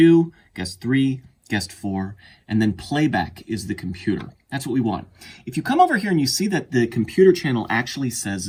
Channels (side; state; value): both; identical; correlation 1.00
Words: guest 3, guest 4, and then playback is the computer. That's what we want. If you come over here and you see that the computer channel actually